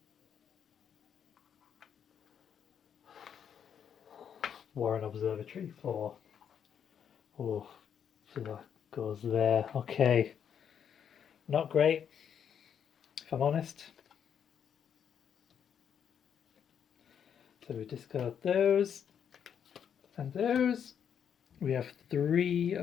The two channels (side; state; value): right; quieter; 8.2 dB